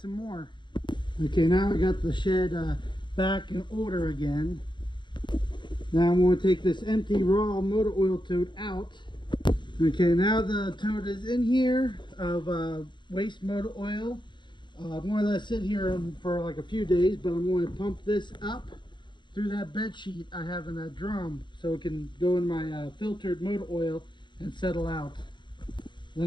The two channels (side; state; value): right; late; 0.22 ms